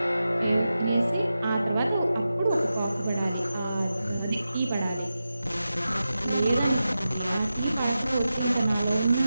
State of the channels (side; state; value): both; inverted; correlation -0.92